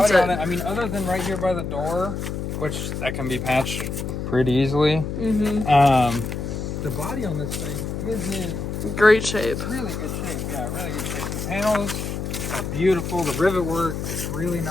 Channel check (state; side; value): noise; left; hum, 4 dB below the sound